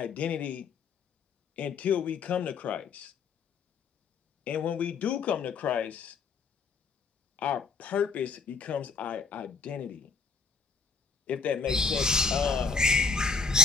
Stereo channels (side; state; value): right; quieter; 4.9 dB